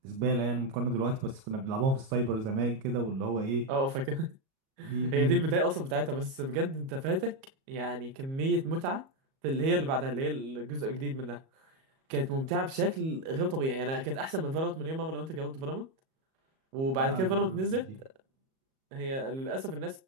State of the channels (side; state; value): left; late; 37 ms